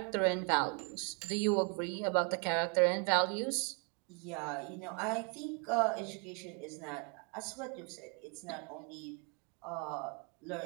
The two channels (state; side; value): quieter; left; 35.3 dB